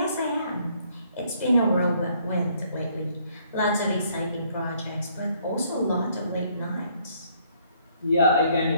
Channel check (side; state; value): both; inverted; correlation -0.66